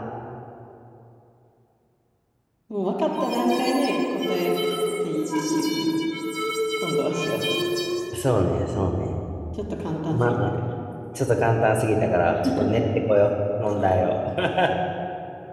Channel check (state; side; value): identical; both; correlation 1.00